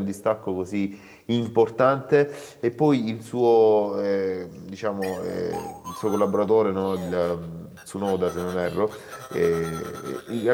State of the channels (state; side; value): identical; both; correlation 1.00